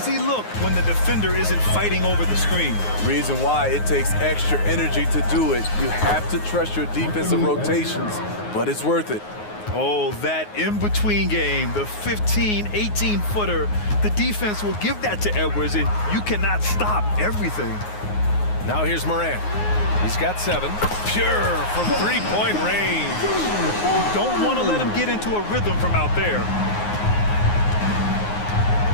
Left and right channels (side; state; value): right; late; 9.5 ms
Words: look when the defender isn't fighting over the screen. Reason why it takes extra energy to do it. You have to trust your defensive rotations, but it's worth it. Oh, that in-between game, the 15, 18-footer, the defense will give that to Edwards, and you cannot stop everything. Now here's Morant. He's got 7. Pure from 3-point range. Don't want to let him get into a rhythm from out there.